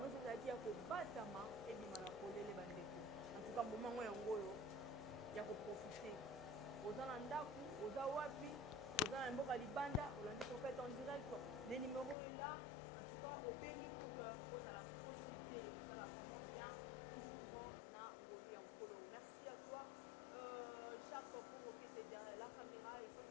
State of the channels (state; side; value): drops out; right; at 12.2 s